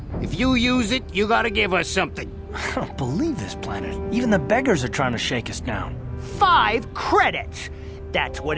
If you use it, you gotta give us something. I don't believe this planet. Even the beggars are trying to shake us down. 5 credits! That's what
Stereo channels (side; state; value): both; identical; correlation 1.00